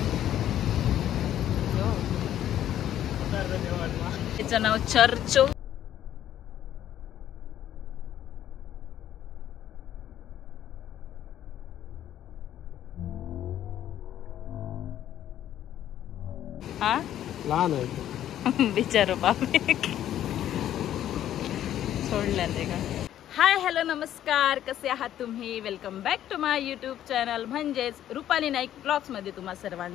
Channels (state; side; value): quieter; right; 11.5 dB